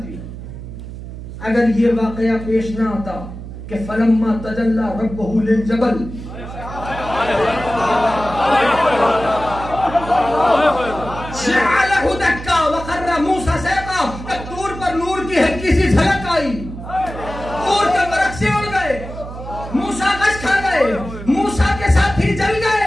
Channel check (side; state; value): right; noise; hum, 11 dB below the sound